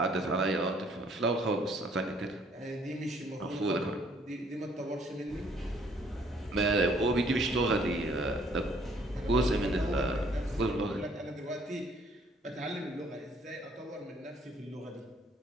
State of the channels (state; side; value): normal; both; correlation 0.62